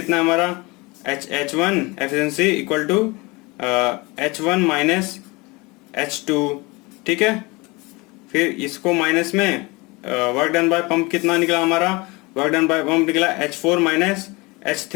है हमारा, H1 efficiency equal to H1 minus H2, ठीक है। फिर इसको माइनस में वर्क डन बाय पंप कितना निकला हमारा, वर्क डन बाय पंप निकला H4 minus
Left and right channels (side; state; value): right; quieter; 25.0 dB